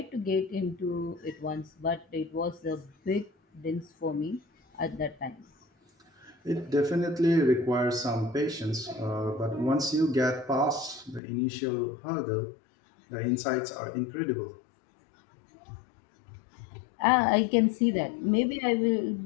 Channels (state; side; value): drops out; right; at 11.2 s